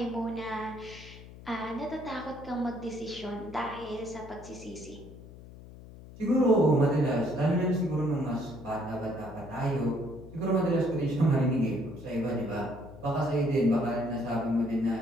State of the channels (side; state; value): left; noise; hum, 17 dB below the sound